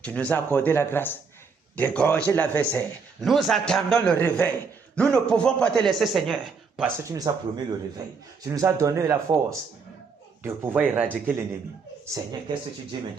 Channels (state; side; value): quieter; left; 5.2 dB